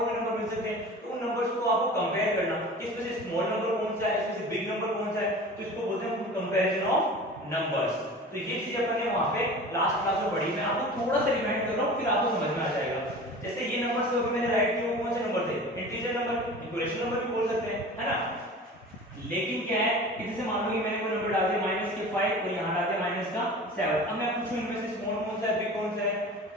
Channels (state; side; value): normal; both; correlation 0.38